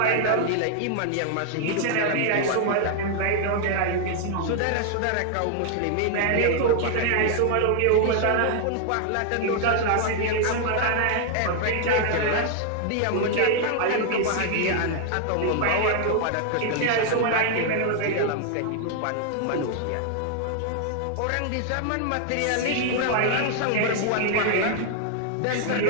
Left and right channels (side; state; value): both; different; correlation 0.00